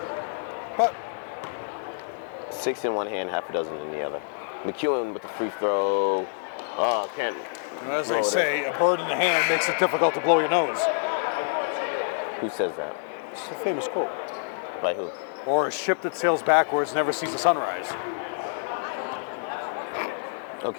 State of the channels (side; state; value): right; silent; digital silence